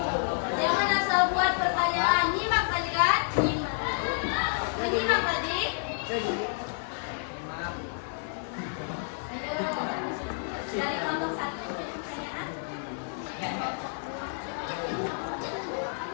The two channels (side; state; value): right; silent; 58 dB below the other